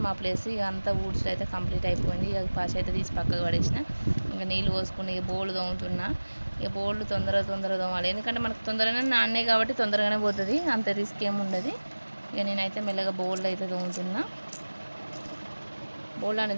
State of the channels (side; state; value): both; inverted; correlation -1.00